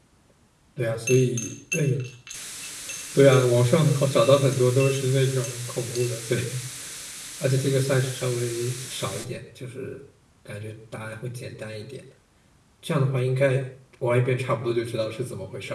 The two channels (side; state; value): both; identical; correlation 1.00